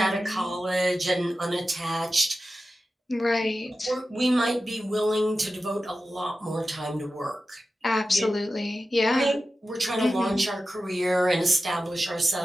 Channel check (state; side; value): normal; both; correlation 0.93